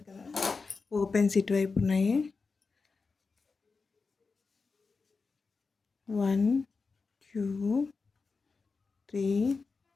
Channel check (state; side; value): quieter; right; 4.5 dB